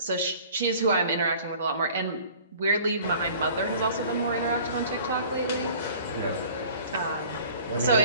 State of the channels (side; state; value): both; inverted; correlation -0.48